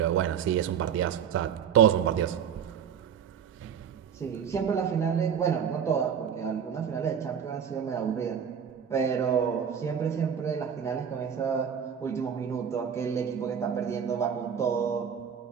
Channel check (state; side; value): quieter; left; 7.9 dB